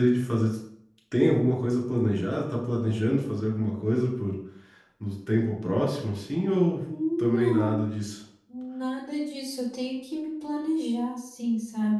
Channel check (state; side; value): identical; both; correlation 1.00